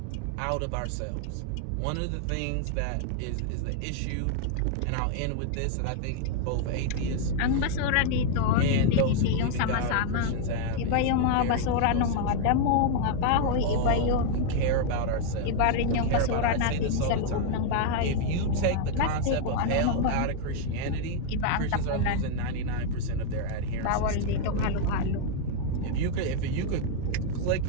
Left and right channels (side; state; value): both; different; correlation 0.00